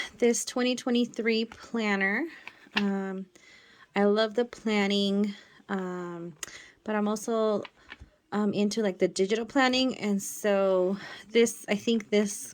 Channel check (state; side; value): identical; both; correlation 1.00